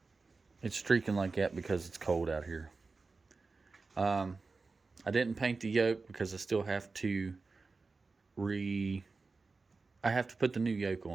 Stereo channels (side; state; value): left; quieter; 4.1 dB